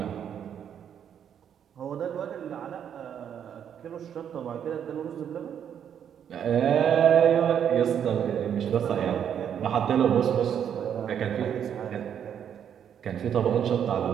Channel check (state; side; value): quieter; left; 8.8 dB